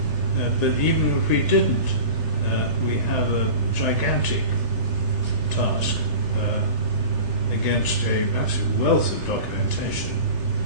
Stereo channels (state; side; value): late; left; 3.4 ms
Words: But even if we didn't, we have a gigantic task against a massive wealth of documentation,